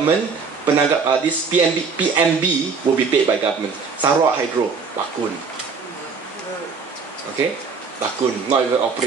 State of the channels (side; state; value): left; quieter; 5.1 dB